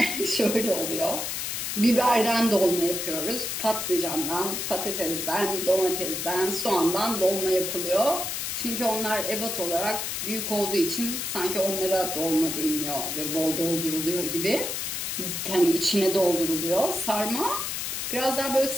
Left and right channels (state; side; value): noise; left; hiss, 3 dB below the sound